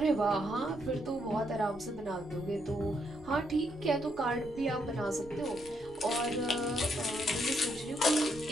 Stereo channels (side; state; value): left; noise; rumble, 20 dB below the sound